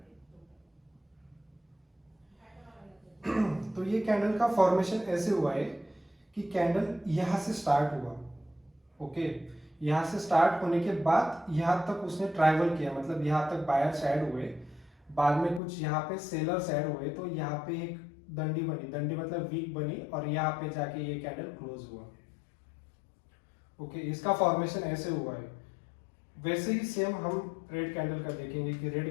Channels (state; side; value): drops out; right; at 15.6 s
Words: तो ये कैंडल का फॉर्मेशन ऐसे हुआ है कि कैंडल यहां से स्टार्ट हुआ। ओके, यहाँ से स्टार्ट होने के बाद यहाँ तक उसने ट्रैवल किया, मतलब यहाँ तक बायर्स ऐड हुए, बाद में कुछ यहाँ पे सेलर्स ऐड हुए, तो यहाँ पे एक दंडी बनी, दंडी मतलब वीक बनी, और यहाँ पे जाके ये कैंडल क्लोज हुआ। ओके, इसका फॉर्मेशन ऐसे हुआ है। वैसे ही सेम हम रेड कैंडल का देखेंगे कि रेड